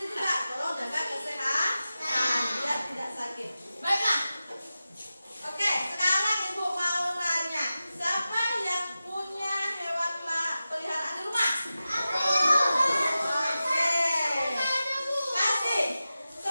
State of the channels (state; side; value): inverted; both; correlation -0.94